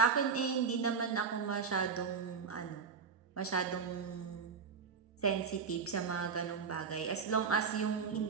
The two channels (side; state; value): left; quieter; 5.9 dB